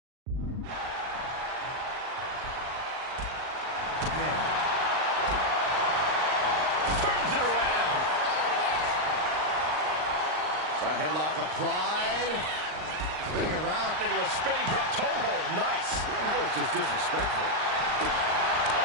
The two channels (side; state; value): left; late; 39 ms